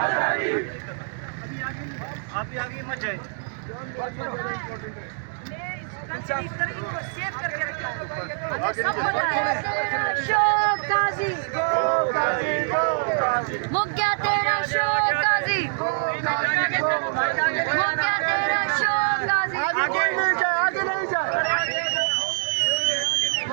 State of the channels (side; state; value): left; silent; digital silence